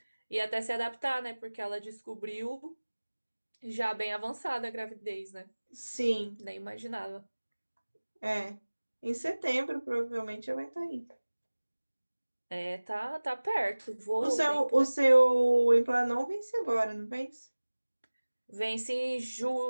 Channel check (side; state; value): both; inverted; correlation -1.00